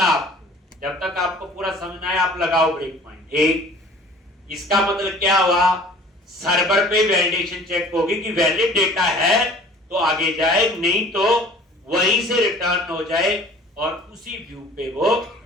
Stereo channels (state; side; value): normal; both; correlation 0.49